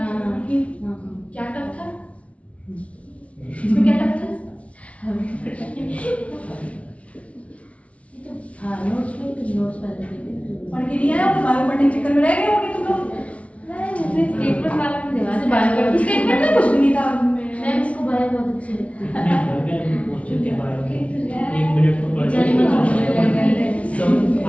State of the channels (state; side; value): late; right; 0.064 ms